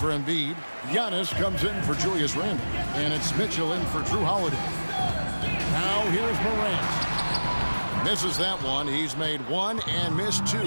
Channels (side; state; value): both; inverted; correlation -1.00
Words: Embiid. Giannis comes in for Julius Randle. And it's Mitchell in for Drew Holiday. Now here's Morant. Misses that one. He's made one and missed